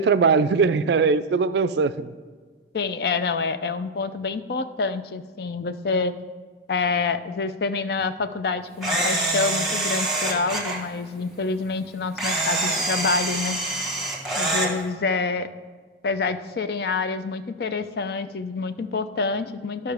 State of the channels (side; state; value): both; normal; correlation 0.02